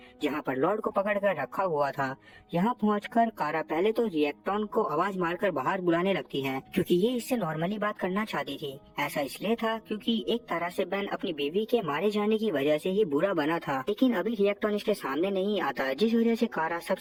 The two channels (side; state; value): both; identical; correlation 1.00